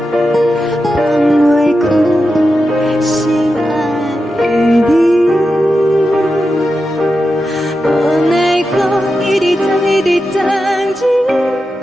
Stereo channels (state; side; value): normal; both; correlation 0.89